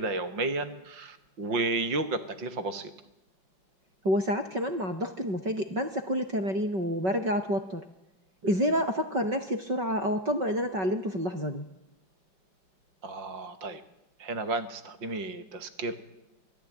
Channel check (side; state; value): left; late; 5.3 ms